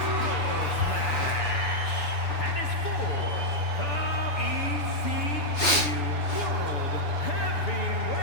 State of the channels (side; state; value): right; late; 7.1 ms